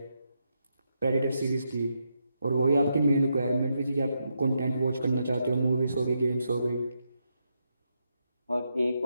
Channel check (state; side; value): inverted; both; correlation -0.83